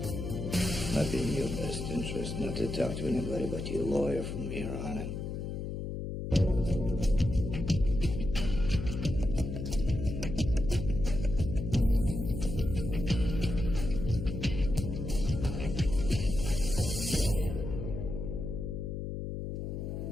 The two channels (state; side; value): noise; left; hum, 5 dB below the sound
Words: Might be in your best interest not to talk to anybody but your lawyer from here on in.